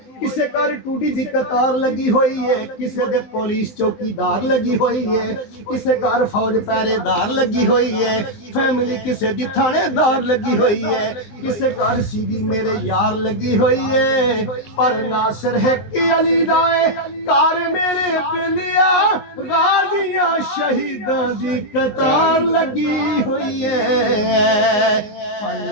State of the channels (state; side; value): late; right; 19 ms